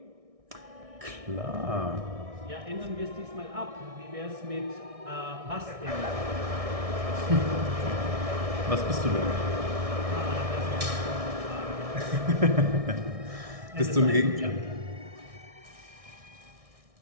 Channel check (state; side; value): late; left; 1.6 ms